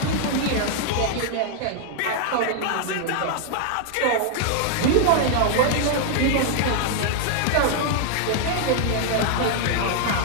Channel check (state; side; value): different; both; correlation 0.00